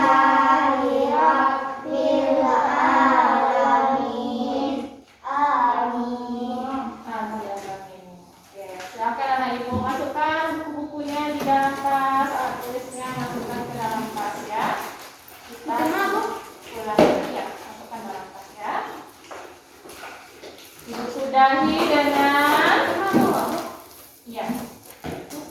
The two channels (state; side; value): identical; both; correlation 1.00